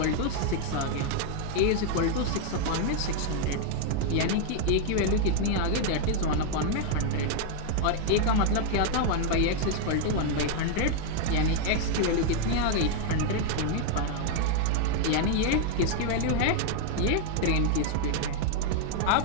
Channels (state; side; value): different; both; correlation 0.00